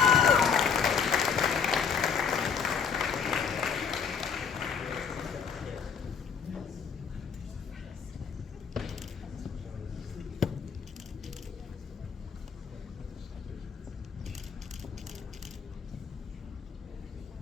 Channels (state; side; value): quieter; right; 6.5 dB